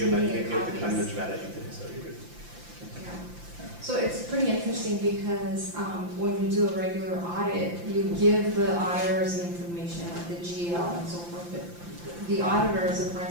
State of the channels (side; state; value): left; late; 5.8 ms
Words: many the copies. kind of strategy today, so you're good. Yeah. So it's pretty interesting because when you do a regular audit, you give the auditors the information, like the GL and so forth, but the auditors, the